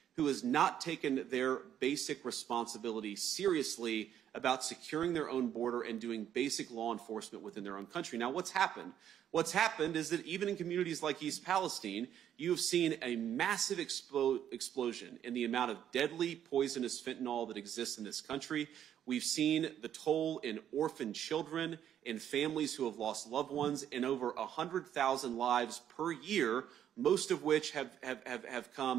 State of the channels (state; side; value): quieter; left; 10.1 dB